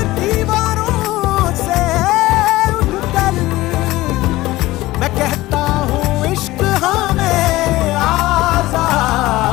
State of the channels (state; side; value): quieter; right; 18.0 dB